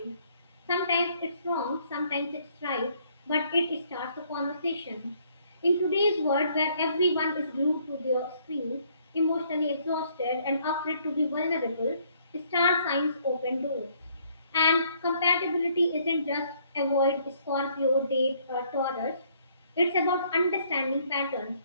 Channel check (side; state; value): both; inverted; correlation -0.65